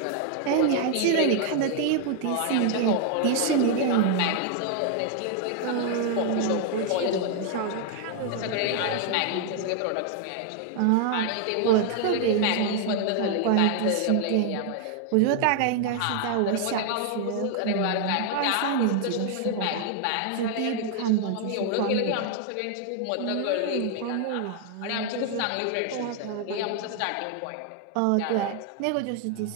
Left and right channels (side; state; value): both; different; correlation 0.00